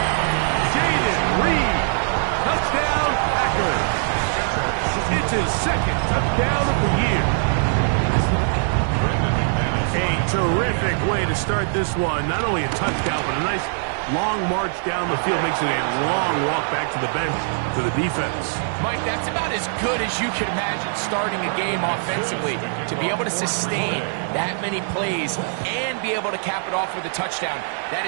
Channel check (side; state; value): left; silent; digital silence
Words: Jaden Reed, touchdown Packers. It's his 2nd touchdown of the year. A terrific way to start this one. Not only a touchdown, but a nice long march down the field. Makes it a long walk back to the bench for the defense. Mike, that's about as good as you can imagine starting a game offensively. To be able to sustain that many plays and be able to cap it off with a touchdown, that